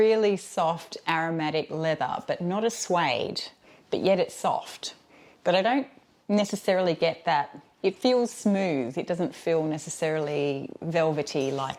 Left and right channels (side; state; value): both; identical; correlation 1.00